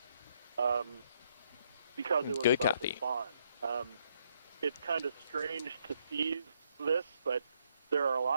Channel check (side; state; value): both; inverted; correlation -0.73